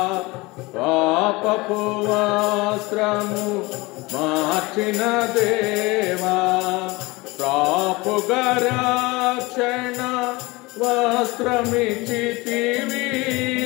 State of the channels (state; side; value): quieter; right; 23.0 dB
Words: పాపపు వస్త్రము మార్చిన దేవా. పాపుగా రక్షణ వస్త్రమిచ్చితివి,